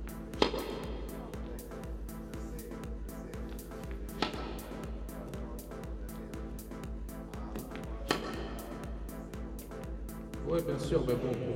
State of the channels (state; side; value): identical; both; correlation 1.00